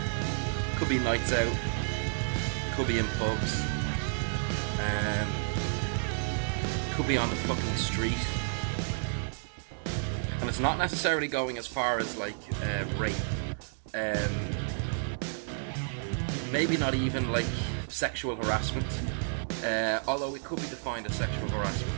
could be nights out, could be in pubs, could be on the fucking street. And it's not necessarily going as far as like rape. Maybe not even like sexual harassment, although it could be defined as sexual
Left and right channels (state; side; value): silent; left; digital silence